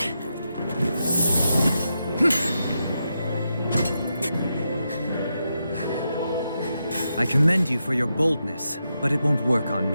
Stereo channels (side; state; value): both; inverted; correlation -0.85